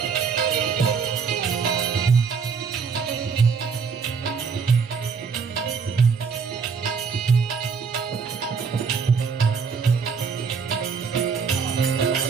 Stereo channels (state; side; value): quieter; left; 5.7 dB